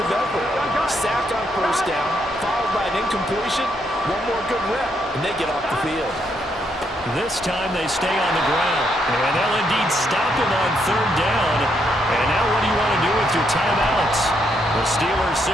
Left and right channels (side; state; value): both; normal; correlation 0.76